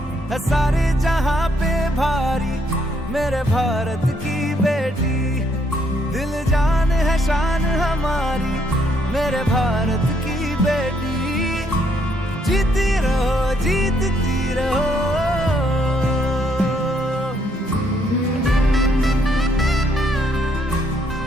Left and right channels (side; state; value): both; normal; correlation 0.71